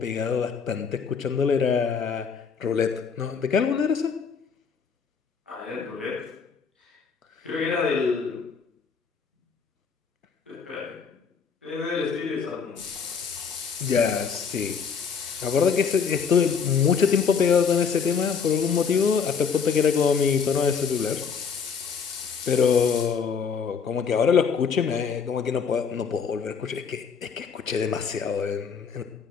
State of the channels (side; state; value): right; quieter; 6.1 dB